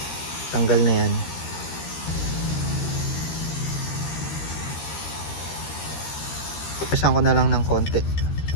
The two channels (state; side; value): late; right; 13 ms